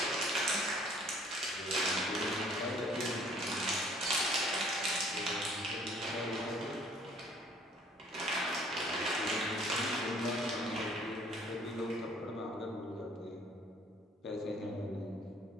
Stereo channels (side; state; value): both; normal; correlation 0.57